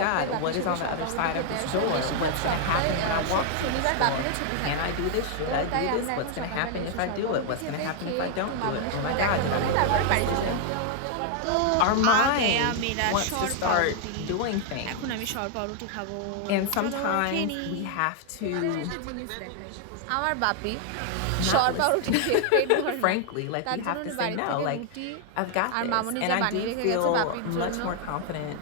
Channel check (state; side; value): different; both; correlation 0.00